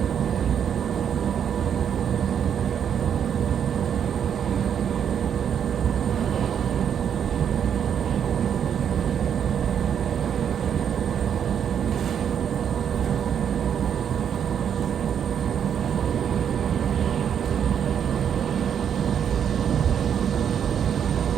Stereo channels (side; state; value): left; quieter; 8.4 dB